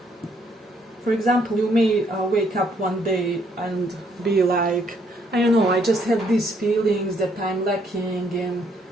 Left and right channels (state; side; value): normal; both; correlation 0.69